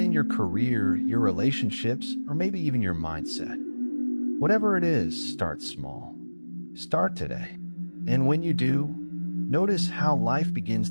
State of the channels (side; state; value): both; inverted; correlation -1.00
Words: your career, your relationships, or maybe even your mindset? Whatever it is, start small. Start today. And when you do, notice how life begins